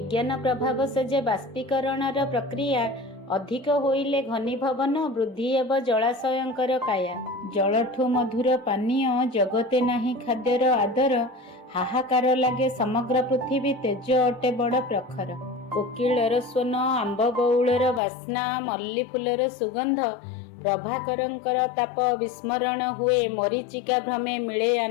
प्रभाव से जे बाष्पीकरणर प्रक्रिया अधिक होइले घनीभवन वृद्धि एव जलाशयंकर काया जलठू मधुर पानीय जगते नाही खाद्यर आदर हाहाकार लागे समग्र पृथ्वी तेज अटे बड़ प्रखर। कोकिलर स्वन आंब बौलर बास्ना मल्ली फुलर सुगंध प्रभाकरंकर ताप विस्मरण हुए मरीचिका भ्रमे मिले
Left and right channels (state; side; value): drops out; right; at 18.0 s